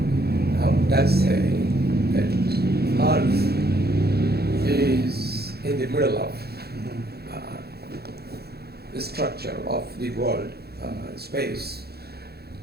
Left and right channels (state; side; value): late; left; 0.46 ms